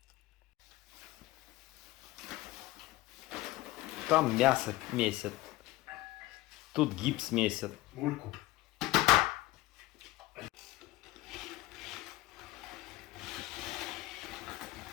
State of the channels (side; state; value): right; quieter; 18.0 dB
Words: Там мясо месят. Тут гипс месят. Мульку.